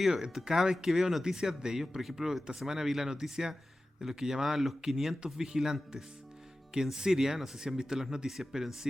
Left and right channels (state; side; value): normal; both; correlation 0.95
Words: Cada vez que veo noticias de ellos, por ejemplo, esta semana vi la noticia de los que llamaban los 500 vigilantes. Que en Siria, no sé si han visto las noticias, pero en